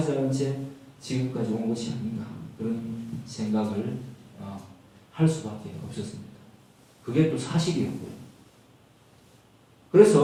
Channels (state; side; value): identical; both; correlation 1.00